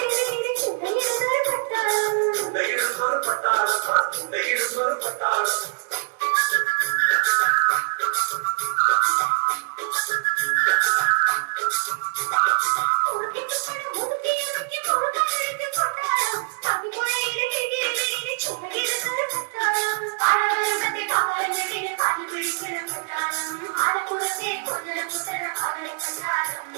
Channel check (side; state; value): left; silent; digital silence